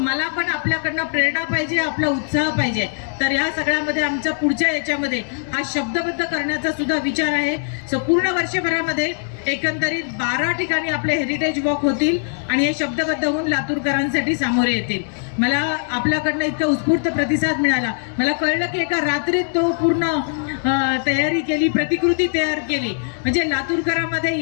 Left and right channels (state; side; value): silent; right; 65 dB below the other